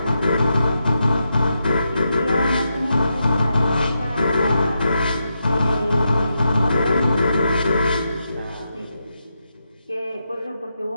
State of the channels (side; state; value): both; inverted; correlation -0.85